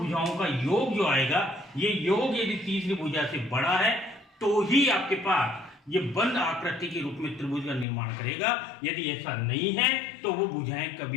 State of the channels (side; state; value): right; drops out; at 7.9 s